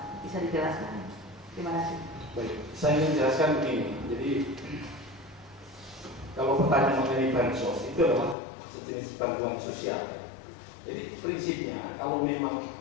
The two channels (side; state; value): right; drops out; at 8.3 s